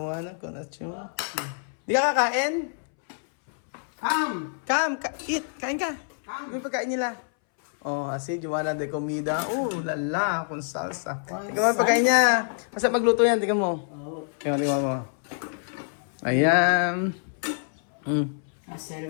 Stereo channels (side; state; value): right; silent; 61 dB below the other